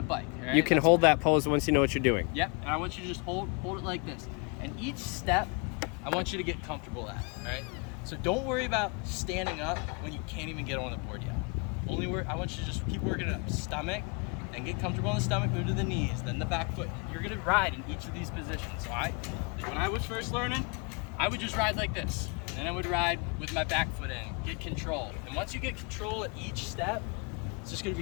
bike. All right? You can hold that pose once you know what you're doing. Yep, and I want you to just hold it like this. And each step, I want you to get comfortable at, all right? So don't worry about standing up when you can't even get on the board yet. I want you to just keep working it up. Stomach, then get comfortable on the stomach, move to the knees, then the back foot. You're gonna ride in each of these positions, all right? When I was first learning, I would just ride like this. Then I would ride with my back foot in, get control. And once you get control at each step, it's just gonna be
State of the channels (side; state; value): right; quieter; 33.6 dB